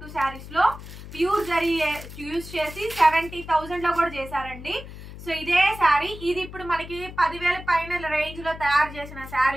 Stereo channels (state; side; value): noise; left; hum, 13 dB below the sound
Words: శారీస్ లో ప్యూర్ జరీ యూజ్ చేసి 70,000 లో కూడా చేశారండి. సో ఇదే శారీ ఇది ఇప్పుడు మనకి 10,000 పైన రేంజ్ లో తయారు చేసిన